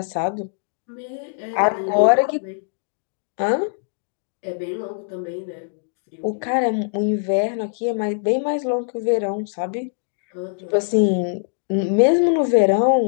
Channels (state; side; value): silent; right; digital silence